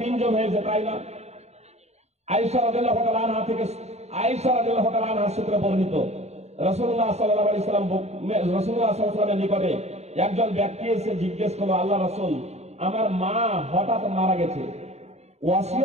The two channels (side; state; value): left; late; 0.32 ms